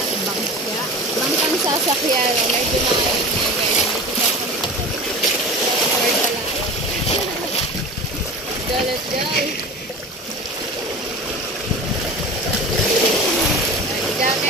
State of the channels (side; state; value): both; normal; correlation 0.34